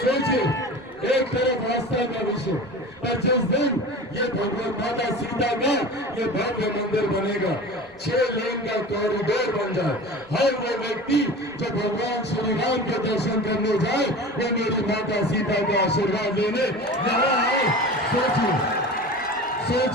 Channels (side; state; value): right; noise; rumble, 28 dB below the sound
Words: सोचिए, एक तरफ आस्था का विषय, पर जिस दिन ये भगवान माता सीता का ये भव्य मंदिर बनेगा, 6 लेन का कॉरिडोर बन जाए, हर वो व्यक्ति जो भगवान श्री राम के दर्शन करने जाए, वो मेरी माता सीता का आशीर्वाद लेने यहाँ आए।